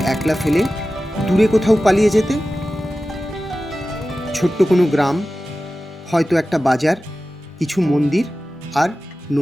একলা ফেলে দূরে কোথাও পালিয়ে যেতে? ছোট্ট কোনো গ্রাম, হয়তো একটা বাজার, কিছু মন্দির আর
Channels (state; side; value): normal; both; correlation 0.95